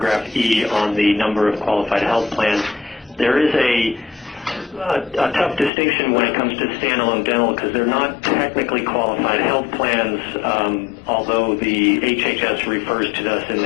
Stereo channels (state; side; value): drops out; right; at 5.7 s